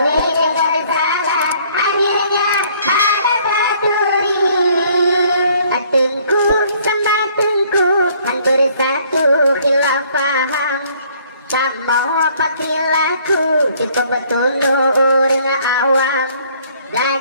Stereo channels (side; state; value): both; inverted; correlation -0.61